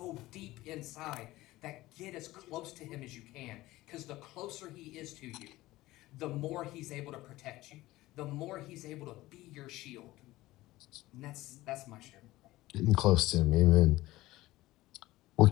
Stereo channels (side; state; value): right; quieter; 17.7 dB